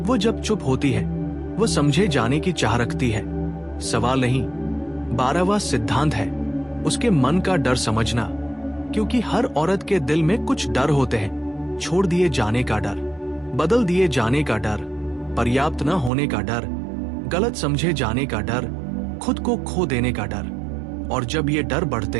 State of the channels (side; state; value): left; drops out; at 16.1 s